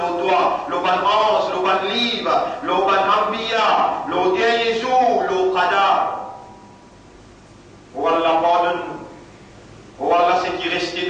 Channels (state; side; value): identical; both; correlation 1.00